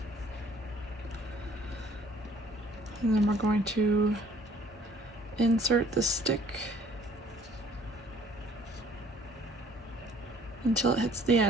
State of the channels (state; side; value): normal; both; correlation 0.57